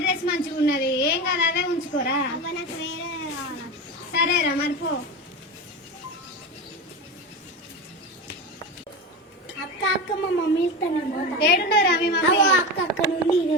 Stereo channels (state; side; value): normal; both; correlation 0.23